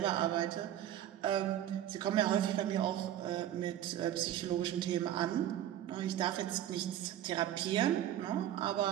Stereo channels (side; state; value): left; quieter; 11.6 dB